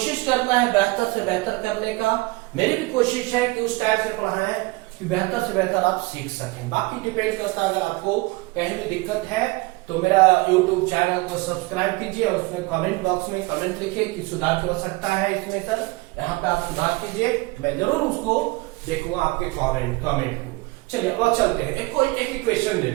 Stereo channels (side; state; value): left; quieter; 23.3 dB